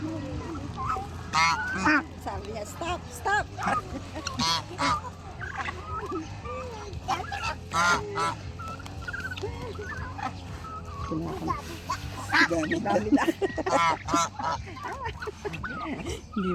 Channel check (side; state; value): both; identical; correlation 1.00